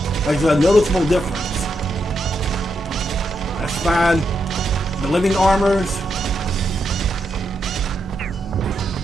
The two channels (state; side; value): normal; both; correlation 0.82